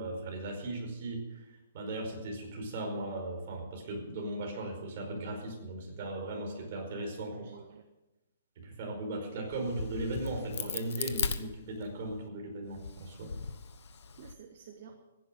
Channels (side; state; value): both; inverted; correlation -0.57